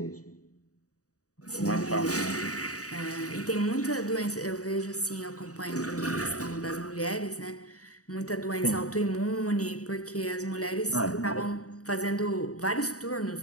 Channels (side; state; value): right; late; 0.66 ms